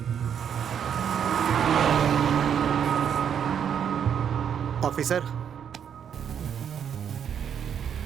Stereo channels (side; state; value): left; quieter; 8.3 dB